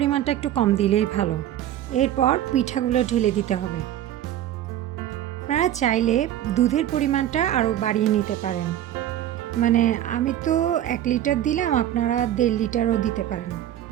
একটু কম দিলেই ভালো। এরপর পিঠাগুলো ঢেলে দিতে হবে। আপনারা চাইলে দুধের পরিমাণটা আরও বাড়িয়ে নিতে পারেন। মানে আমি তো 1 লিটার দিলাম, আপনারা 1.5 লিটারও দিতে পারেন।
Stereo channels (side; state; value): left; quieter; 12.0 dB